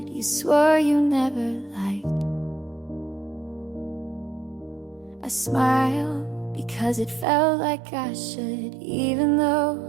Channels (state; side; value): drops out; left; at 7.2 s